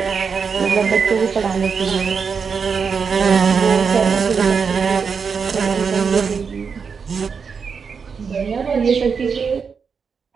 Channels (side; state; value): left; quieter; 5.9 dB